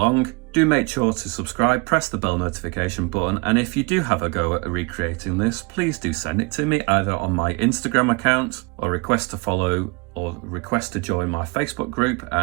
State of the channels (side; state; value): left; quieter; 28.0 dB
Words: Do make sure to subscribe, press the bell notification button, and if you do have a go at recreating this, please do send it to me either on my Instagram account or request to follow or request to join my Facebook group,